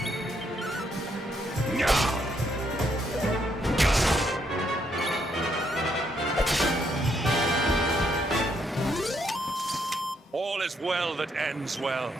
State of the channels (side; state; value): both; normal; correlation 0.74